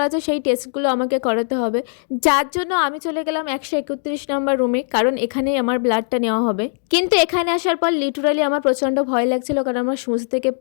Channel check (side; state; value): right; silent; 66 dB below the other